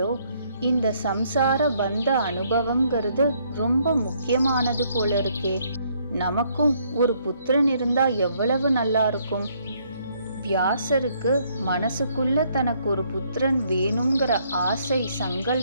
இந்த சம்சார பந்த அனுபவம்ங்கிறது ரொம்ப முக்கியமானது போல இருக்கே. நமக்கும் ஒரு புத்திரன் இருந்தா எவ்வளவு நல்லா இருக்கும். வியாசருக்கு மனசுக்குள்ள தனக்கு ஒரு புத்திரன் வேணுங்கிற ஆசை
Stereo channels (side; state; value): both; inverted; correlation -0.69